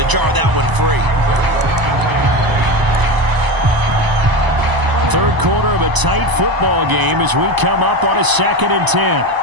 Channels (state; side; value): late; left; 1.0 ms